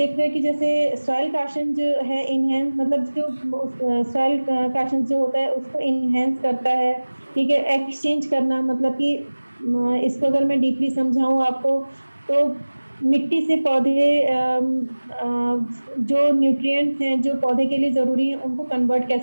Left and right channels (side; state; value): both; inverted; correlation -1.00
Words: रहे हैं कि जैसे सॉइल काशन जो है इनहेंस, मतलब जो सॉइल काशन जो होता है उसको इनहेंस करता है। ठीक है, एक्सचेंज करना, मतलब कि इसको अगर मैं डीपली समझाऊं आपको, तो मिट्टी से पौधे जो न्यूट्रिएंट्स हैं जो पौधे के लिए ज़रूरी हैं उनको कन्वर्ट